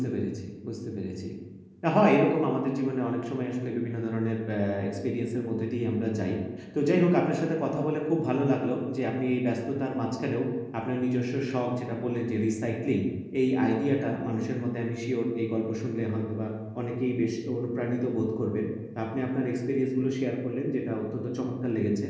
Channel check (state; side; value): identical; both; correlation 1.00